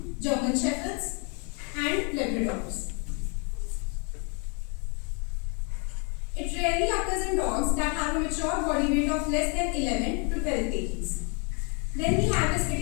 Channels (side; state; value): right; quieter; 35.7 dB